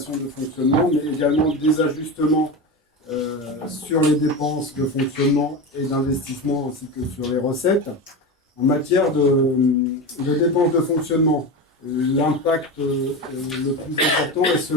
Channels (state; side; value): normal; both; correlation 0.22